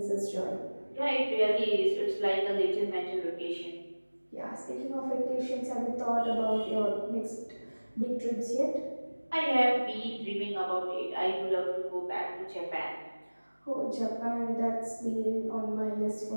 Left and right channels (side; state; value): both; inverted; correlation -1.00